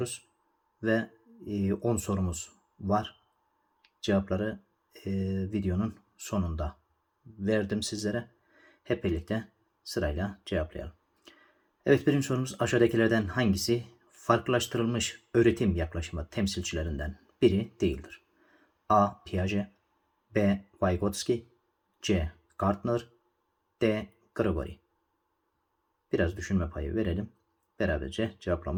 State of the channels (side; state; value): both; identical; correlation 1.00